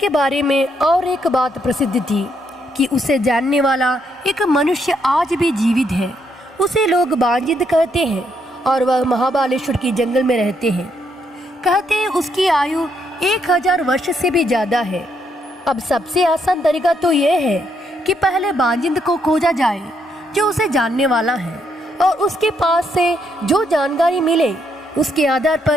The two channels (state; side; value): normal; both; correlation 0.75